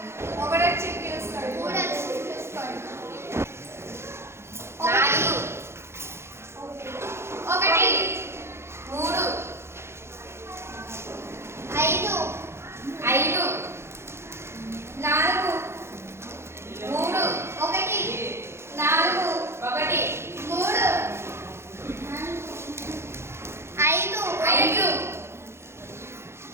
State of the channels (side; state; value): left; late; 0.12 ms